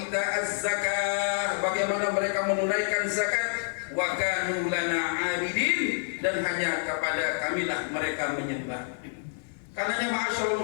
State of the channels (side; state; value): right; silent; digital silence